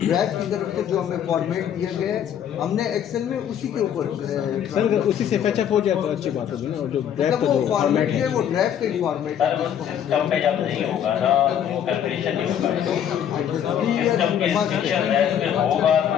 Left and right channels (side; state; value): right; quieter; 9.4 dB